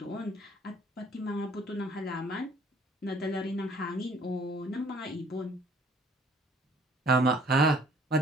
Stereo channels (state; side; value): normal; both; correlation 0.57